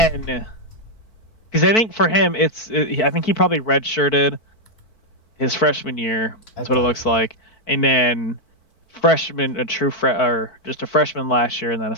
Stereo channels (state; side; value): late; right; 4.5 ms